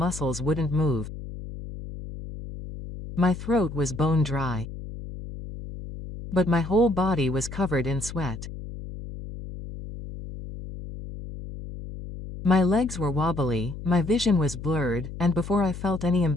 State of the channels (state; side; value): noise; left; hum, 11 dB below the sound